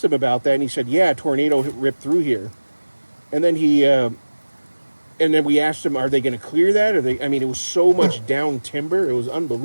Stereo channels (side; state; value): both; inverted; correlation -1.00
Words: him about that, and he said, a tornado ripped through here. And then and then we asked him, are they going to clear that? It was so much down timber, it was